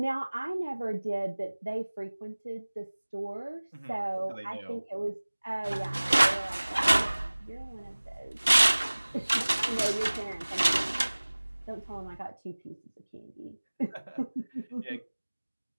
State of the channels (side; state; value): both; inverted; correlation -1.00